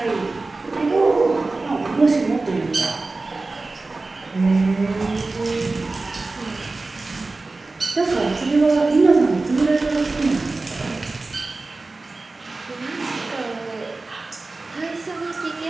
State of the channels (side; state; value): left; quieter; 3.4 dB